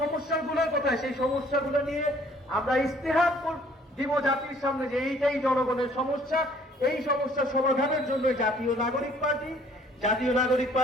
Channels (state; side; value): normal; both; correlation 0.58